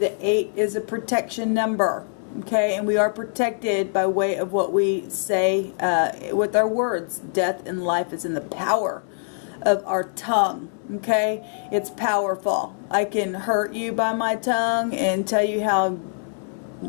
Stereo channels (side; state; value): right; silent; digital silence